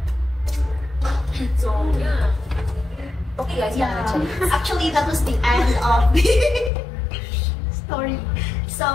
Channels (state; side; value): drops out; right; at 6.7 s